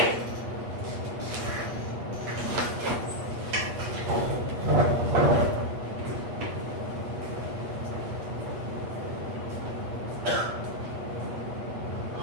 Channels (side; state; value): left; late; 8.3 ms